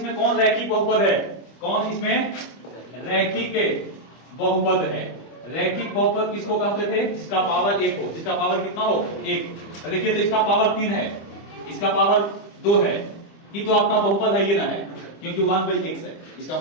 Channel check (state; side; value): late; right; 25 ms